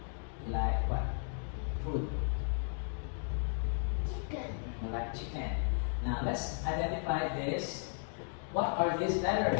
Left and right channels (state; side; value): silent; right; 54 dB below the other